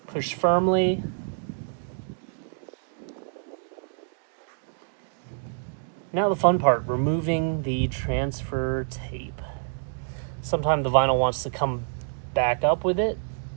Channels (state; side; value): silent; left; digital silence